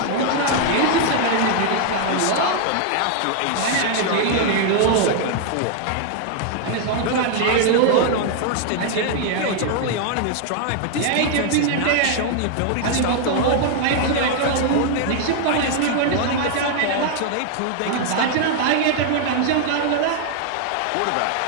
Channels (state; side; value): different; both; correlation 0.00